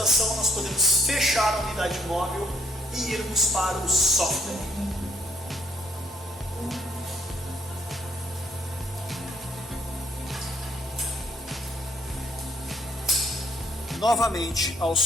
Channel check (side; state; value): both; normal; correlation 0.67